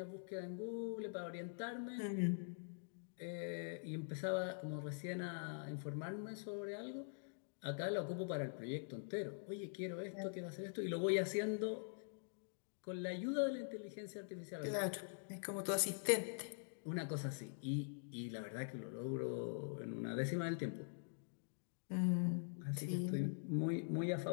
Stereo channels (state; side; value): silent; right; digital silence